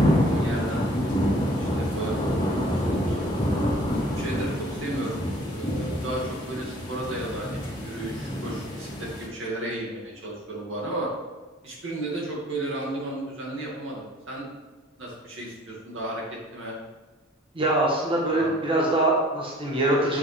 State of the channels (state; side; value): normal; both; correlation 0.53